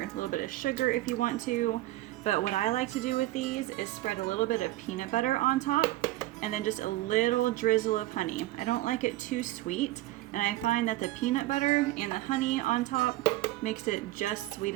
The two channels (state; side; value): quieter; left; 17.0 dB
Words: a little bit of sugar if you want to. But what I like to do with these is spread a little bit of peanut butter on top and then just a little drizzle of honey. I don't like it too sweet, and I find that the peanut butter and the honey on top makes it just sweet